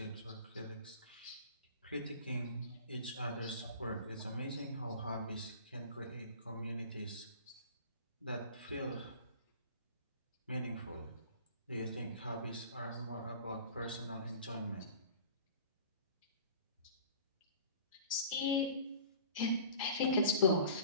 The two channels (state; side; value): inverted; both; correlation -0.43